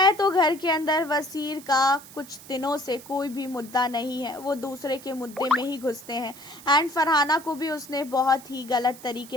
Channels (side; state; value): right; noise; hiss, 18 dB below the sound